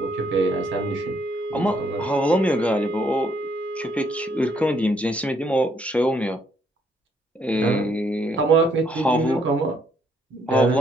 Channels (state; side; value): normal; both; correlation 0.70